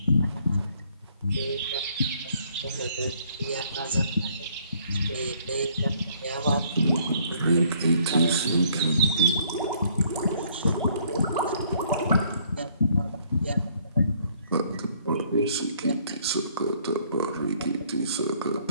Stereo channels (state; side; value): inverted; both; correlation -0.63